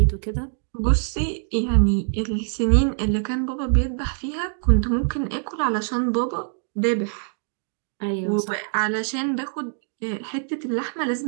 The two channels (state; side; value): silent; left; digital silence